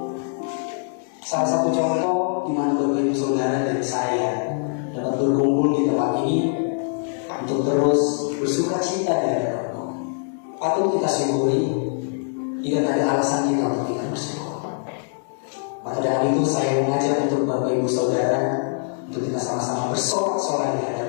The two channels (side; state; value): right; silent; digital silence